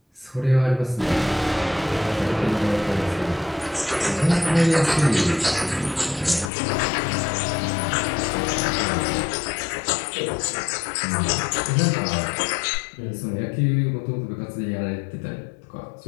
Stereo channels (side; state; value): right; drops out; at 6.5 s